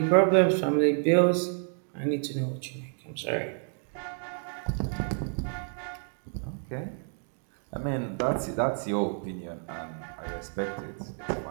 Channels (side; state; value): left; silent; 58 dB below the other